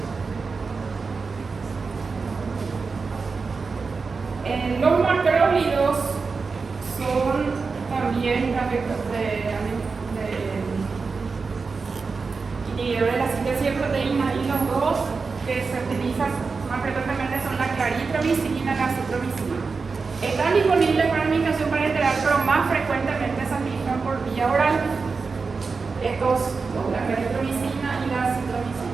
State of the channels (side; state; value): left; quieter; 4.6 dB